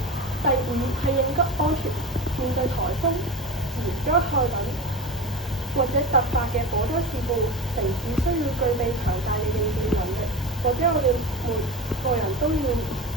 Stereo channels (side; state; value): both; normal; correlation 0.27